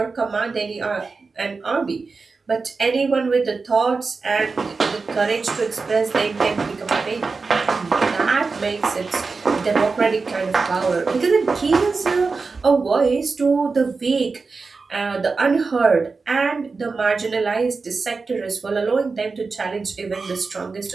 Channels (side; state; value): left; quieter; 4.3 dB